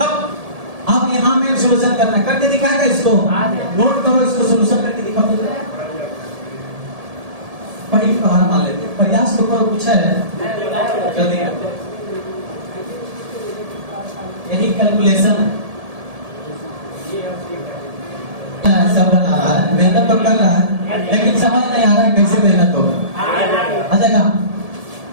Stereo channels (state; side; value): late; left; 1.7 ms